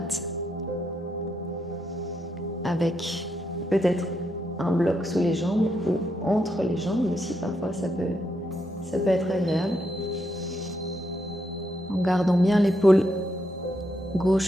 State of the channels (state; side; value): normal; both; correlation 0.80